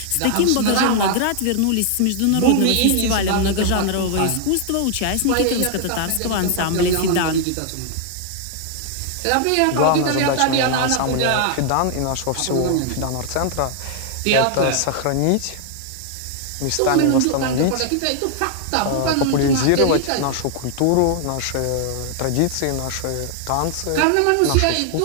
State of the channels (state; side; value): different; both; correlation 0.00